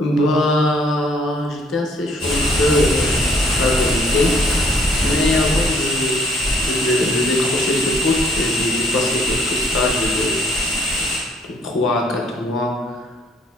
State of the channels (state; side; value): normal; both; correlation 0.63